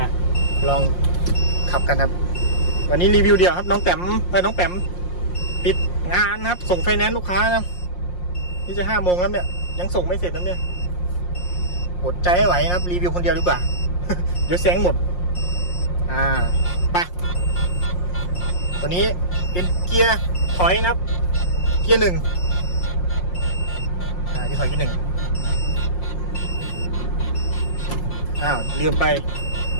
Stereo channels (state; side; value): late; right; 5.6 ms